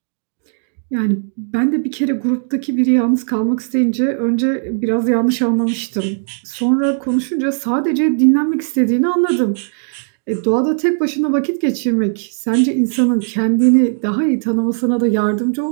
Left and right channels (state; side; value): silent; left; digital silence